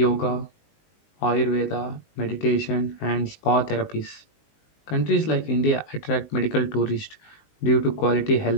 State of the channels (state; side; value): late; right; 19 ms